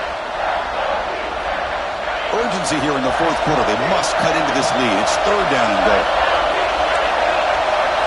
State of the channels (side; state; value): both; identical; correlation 1.00